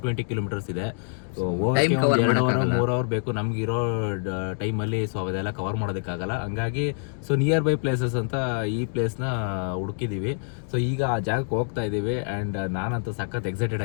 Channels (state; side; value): silent; right; 61 dB below the other